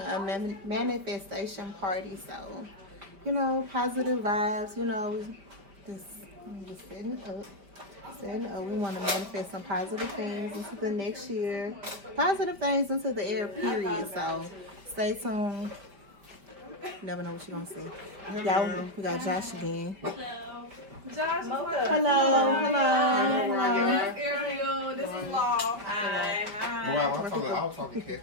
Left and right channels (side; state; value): left; late; 5.1 ms